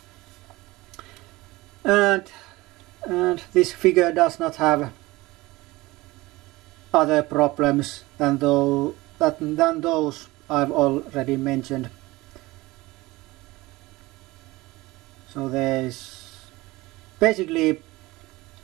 and this figure does not have other problems than those I've already mentioned. So there's basically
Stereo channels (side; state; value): left; quieter; 20.4 dB